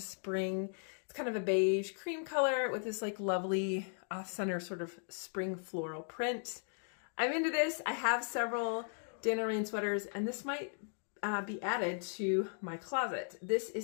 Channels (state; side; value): silent; right; 53 dB below the other